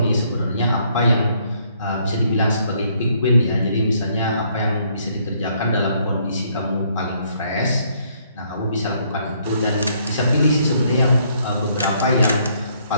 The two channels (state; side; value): inverted; both; correlation -0.68